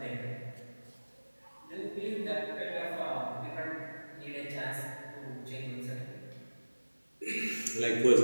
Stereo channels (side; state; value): both; inverted; correlation -1.00